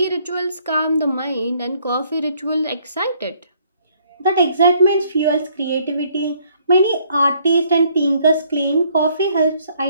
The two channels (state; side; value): inverted; both; correlation -0.65